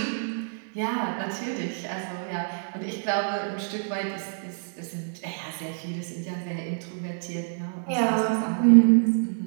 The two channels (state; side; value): silent; left; digital silence